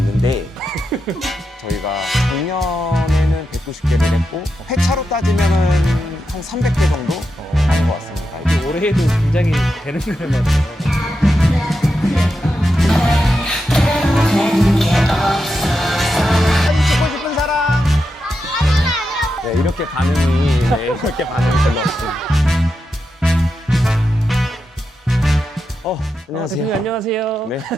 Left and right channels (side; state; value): both; normal; correlation 0.87